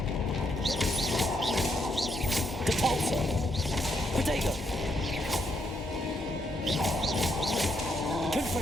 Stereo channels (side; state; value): both; normal; correlation 0.77